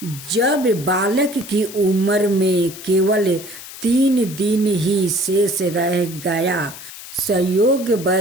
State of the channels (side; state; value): left; noise; hiss, 14 dB below the sound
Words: जब बालक की उम्र में केवल 3 दिन ही शेष रह गया।